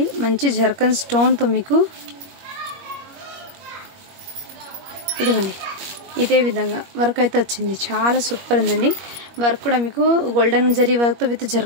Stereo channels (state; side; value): late; left; 21 ms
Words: మంచి జర్కన్ స్టోన్తో మీకు ఇదిగోండి ఇదే విధంగా వర్క్ అయితే వచ్చింది. చాలా సూపర్ ఉందండి. వర్క్ కూడా మీకు గోల్డెన్ జరీ వర్క్తో విత్